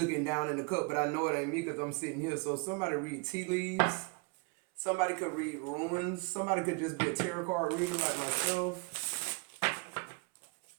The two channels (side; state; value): left; quieter; 31.7 dB